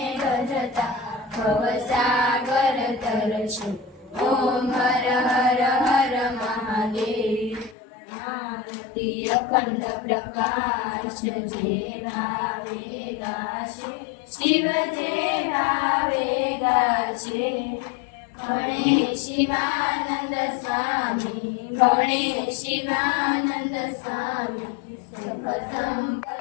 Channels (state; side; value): drops out; right; at 7.8 s